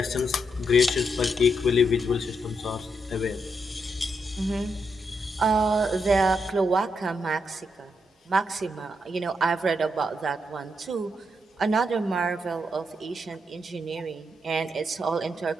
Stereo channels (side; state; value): both; normal; correlation 0.81